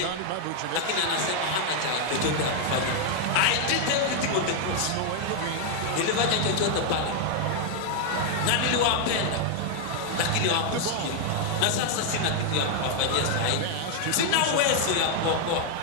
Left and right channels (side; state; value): both; different; correlation 0.00